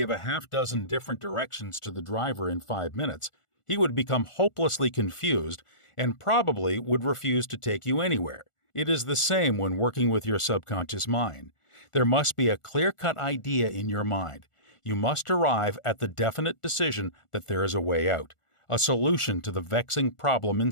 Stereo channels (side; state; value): right; late; 1.4 ms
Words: a half dozen different directions to the driver in 5 minutes, he would become hopelessly confused and probably would refuse to take you anywhere. It is the same when working with your subconscious mind. There must be a clear-cut idea in your mind. You must arrive at the definite decision that there is a way out, a solution to the vexing problem